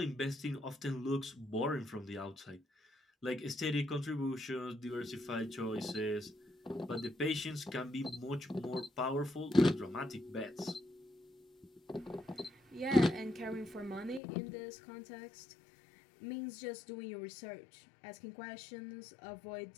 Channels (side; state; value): right; drops out; at 14.2 s